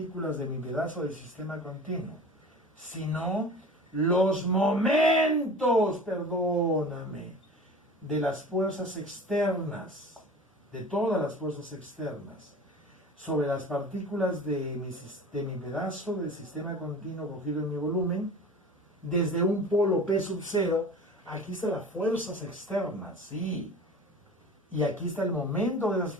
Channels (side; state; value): both; normal; correlation 0.39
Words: de mi pedazo del sistema continuo, sino los momentos, perdóname, de las fuerzas externas, de todas las fuerzas externas, sobre las partículas de mi pedazo del sistema continuo cogido en mi volumen, desde un polo P sub 0, aquí están las fuerzas externas, sí, y aquí está el momento de las